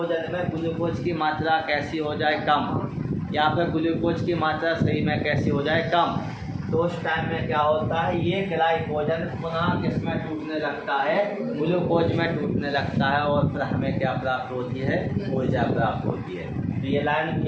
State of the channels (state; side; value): identical; both; correlation 1.00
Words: में ग्लूकोज की मात्रा कैसी हो जाए, कम, या फिर ग्लूकोज की मात्रा शरीर में कैसी हो जाए, कम। तो उस टाइम में क्या होता है, ये ग्लाइकोजन पुनः किस में टूटने लगता है, ग्लूकोज में टूटने लगता है, और फिर हमें क्या प्राप्त होती है, ऊर्जा प्राप्त होती है। तो ये लाइन